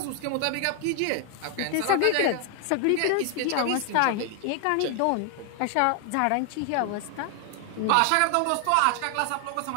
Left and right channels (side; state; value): both; different; correlation 0.00